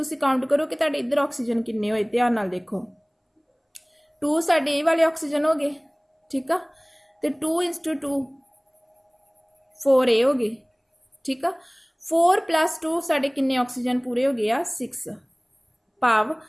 ਕਾਊਂਟ ਕਰੋ ਕਿ ਤੁਹਾਡੇ ਇੱਧਰ ਆਕਸੀਜਨ ਕਿੰਨੇ ਹੋਏ, ਧਿਆਨ ਨਾਲ ਦੇਖੋ। 2 ਸਾਡੇ ਇਹ ਵਾਲੇ ਆਕਸੀਜਨ ਹੋ ਗਏ। ਠੀਕ ਆ, ਤੇ 2 × 2 4 ਇਹ ਹੋ ਗਏ। ਠੀਕ ਆ, 4 + 2 ਸਾਡੇ ਕਿੰਨੇ ਆਕਸੀਜਨ ਪੂਰੇ ਹੋ ਗਏ ਆ 6। ਭਾਵ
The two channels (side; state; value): both; identical; correlation 1.00